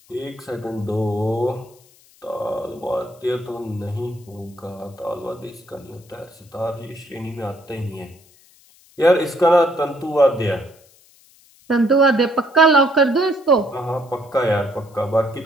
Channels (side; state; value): left; noise; hiss, 29 dB below the sound